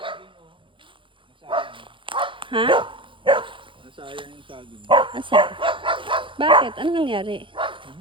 Ha? Nasayang yung saging. Asa? Bakit? Ano nangyari?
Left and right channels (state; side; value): late; left; 0.25 ms